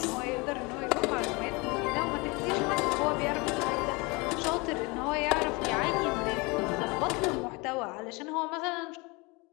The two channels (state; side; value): quieter; right; 26.8 dB